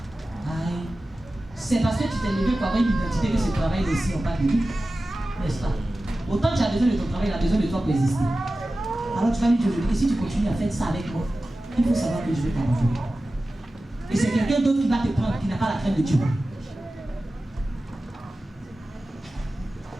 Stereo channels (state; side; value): normal; both; correlation 0.95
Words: Aïe. C'est parce que tu t'es levé pour avoir une identité que ce travail aussi, on parle de lui. N'est-ce pas? Autant tu as besoin de ton travail, il a besoin de toi pour exister. Alors tu vas lui dire aujourd'hui que si tu continues à faire ça avec moi, il faut savoir que je vais t'abandonner. Et c'est quelqu'un d'autre qui va te prendre, qui n'a pas la crainte de Dieu.